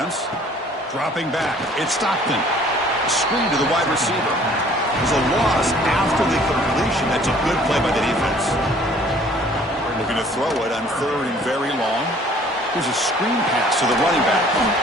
Dropping back. It's Stockton. Screen to the wide receiver. There's a loss after the completion. That's a good play by the defense. Looking to throw it on 3rd and very long. There's a screen pass to the running back.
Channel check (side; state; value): both; normal; correlation 0.55